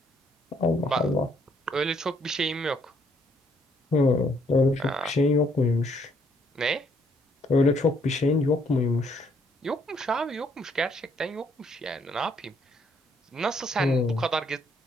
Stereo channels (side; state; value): both; normal; correlation 0.68